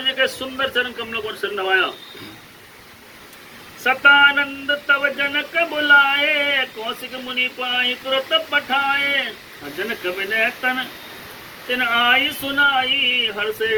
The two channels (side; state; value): both; identical; correlation 1.00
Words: जी के सुंदर चरण कमलों को सिर नवाया। सतानंद तव जनक बुलाए कौशिक मुनि पाई तुरत पठाए। जनक विनय तन तिन आई सुनाई हर